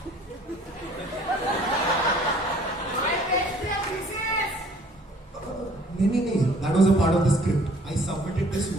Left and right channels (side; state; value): both; normal; correlation 0.56